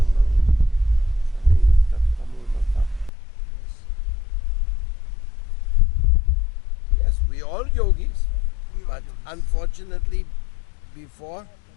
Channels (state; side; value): drops out; right; at 3.1 s